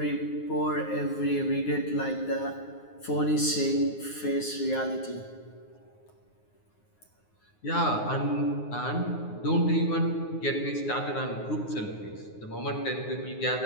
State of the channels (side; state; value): right; late; 9.6 ms